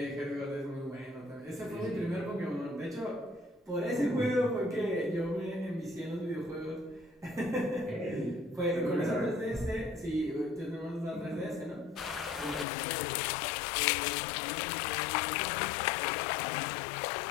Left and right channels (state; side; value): drops out; right; at 12.7 s